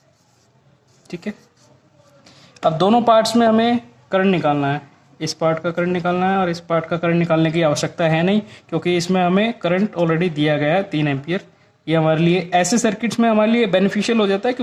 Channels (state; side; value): identical; both; correlation 1.00